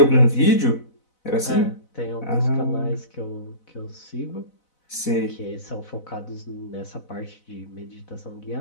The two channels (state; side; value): late; right; 4.0 ms